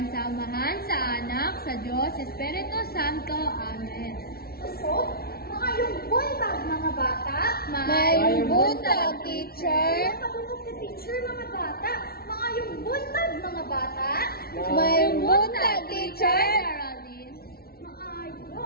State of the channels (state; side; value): late; right; 0.44 ms